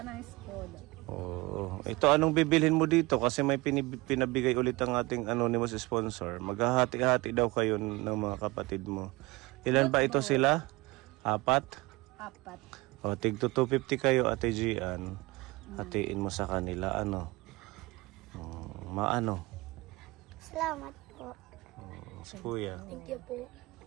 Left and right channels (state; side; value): quieter; left; 22.7 dB